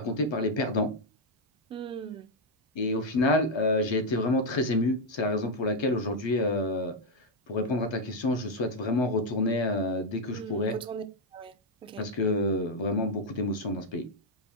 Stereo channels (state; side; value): normal; both; correlation 0.01